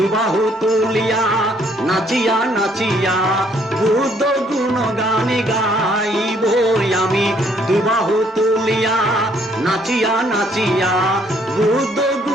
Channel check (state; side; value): normal; both; correlation 0.65